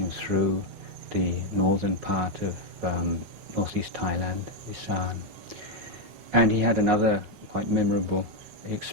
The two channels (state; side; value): late; left; 9.5 ms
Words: through the northern part of northeast Thailand, Isan. And he had another quite memorable